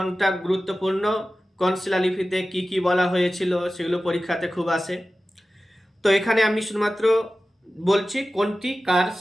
গুরুত্বপূর্ণ, কোন শিলালিপিতে কি কি বলা হয়েছিল, সেগুলো পরীক্ষাতে খুব আসে। তো এখানে আমি শুধুমাত্র বলছি কোনটি কার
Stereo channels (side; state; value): both; normal; correlation 0.95